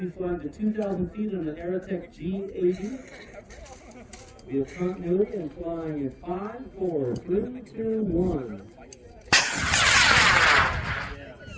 flying to 2,000 feet on an Aerotech G80. We have continuity and flying at 5, 4, 3, 2, 1.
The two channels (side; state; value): both; identical; correlation 1.00